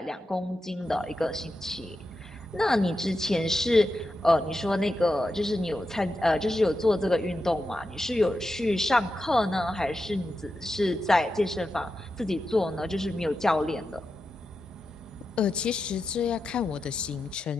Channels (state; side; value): normal; both; correlation 0.89